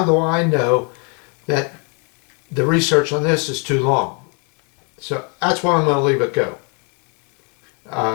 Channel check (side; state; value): right; quieter; 36.7 dB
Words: do I know that the research on this is too long? So that's why I'm going to leave it go.